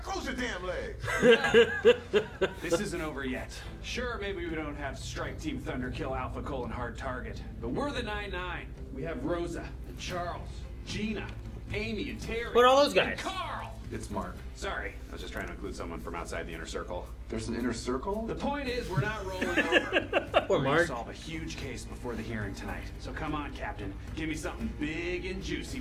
close your damn legs! This isn't over yet. Sure, maybe we don't have Strike Team Thunder kill Alpha Colon hard target, but we're the 9-9. We have Rosa, and Charles, Gina, Amy, and Terry. What are all those guys? And Carl! It's Mark. Sorry, I was just trying to include someone from outside the inner circle. There's an inner circle? The point is, we're not rolling over. Poor We're gonna Mark. solve a huge case before the hearing tonight. So come on, Captain. Give me something big and juicy.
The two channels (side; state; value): both; identical; correlation 1.00